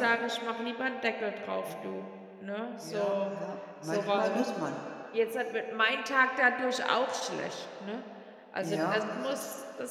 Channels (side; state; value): both; identical; correlation 1.00